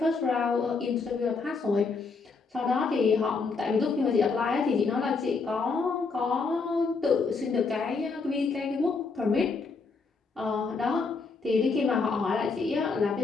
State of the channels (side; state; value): right; quieter; 4.5 dB